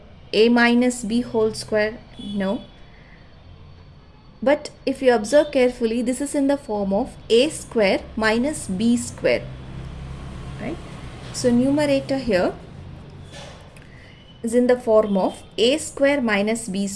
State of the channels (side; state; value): both; identical; correlation 1.00